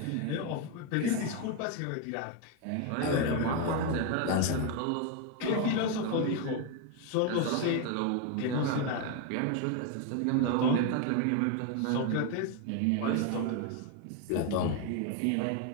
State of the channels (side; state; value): both; different; correlation 0.01